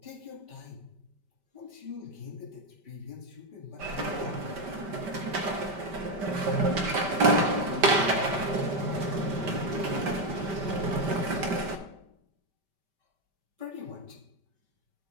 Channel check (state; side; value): late; left; 5.1 ms